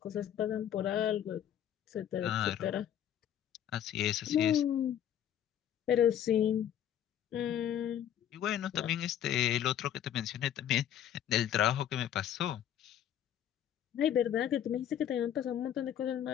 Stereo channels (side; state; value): right; quieter; 10.3 dB